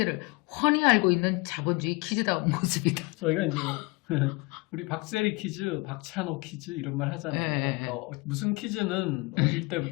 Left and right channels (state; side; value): quieter; right; 26.4 dB